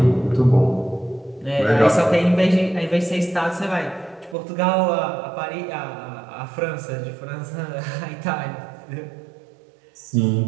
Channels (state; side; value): drops out; left; at 4.4 s